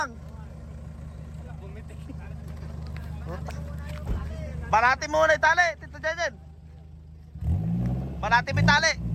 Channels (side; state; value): both; identical; correlation 1.00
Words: Banati muna yung tali, Tito Jejen. Banati mo yung tali.